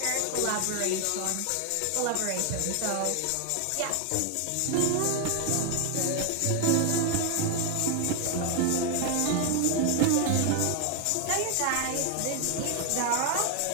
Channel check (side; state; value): both; different; correlation 0.00